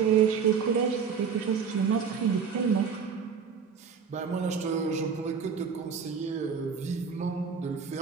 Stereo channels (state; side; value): quieter; left; 6.3 dB